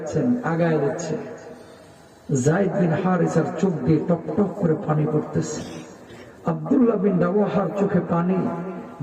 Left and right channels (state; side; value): identical; both; correlation 1.00